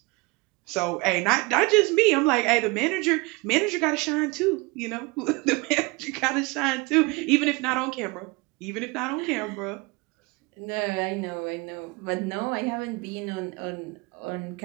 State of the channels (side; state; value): left; quieter; 26.0 dB